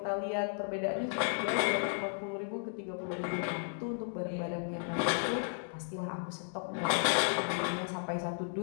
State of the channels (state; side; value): silent; right; digital silence